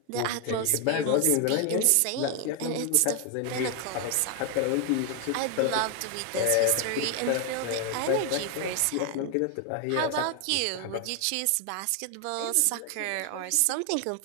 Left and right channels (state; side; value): different; both; correlation 0.01